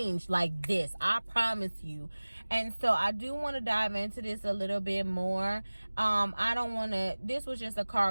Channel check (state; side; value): inverted; both; correlation -1.00